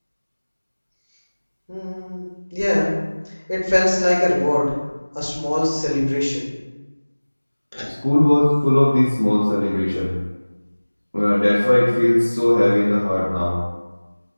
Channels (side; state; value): both; inverted; correlation -1.00